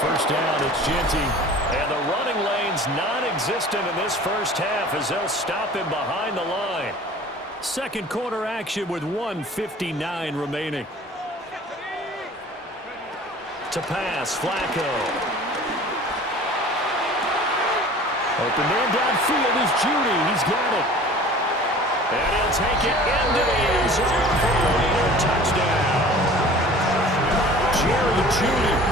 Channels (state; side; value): normal; both; correlation 0.44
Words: first down, it's Ginty. And the running lane's non-existent in this first half as they'll stop him behind the line. Second quarter action with 1:59 remaining. To pass, Flacco. Open man downfield is Judy. He's got it. And he'll take it into the end zone for a Raider touchdown. Jerry Judy,